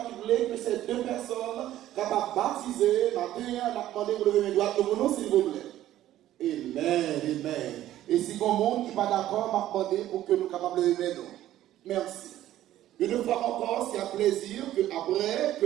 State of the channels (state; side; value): quieter; left; 13.3 dB